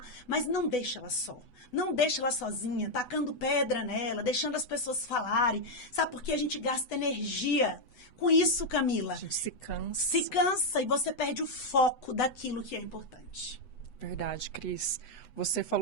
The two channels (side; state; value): right; late; 8.1 ms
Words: mas não deixe ela só. Não deixe ela sozinha, tacando pedra nela, deixando as pessoas falarem. Sabe por que a gente gasta energia com isso, Camila. A gente se cansa. Se cansa e você perde o foco daquilo que é importante. Verdade, Cris. Você